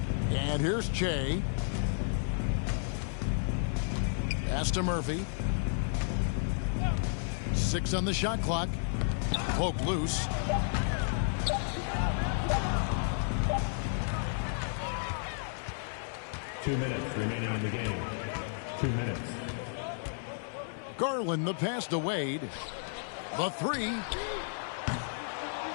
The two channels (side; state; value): right; silent; 56 dB below the other